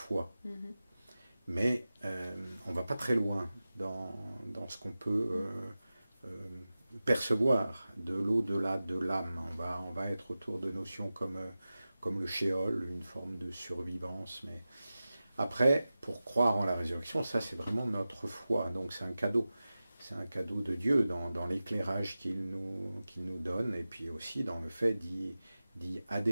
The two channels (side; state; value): both; inverted; correlation -0.95